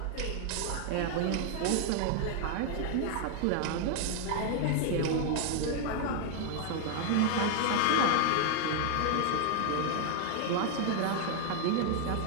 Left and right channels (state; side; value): different; both; correlation 0.00